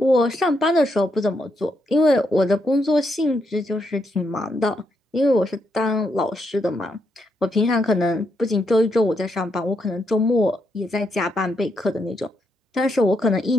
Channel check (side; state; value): both; normal; correlation 0.79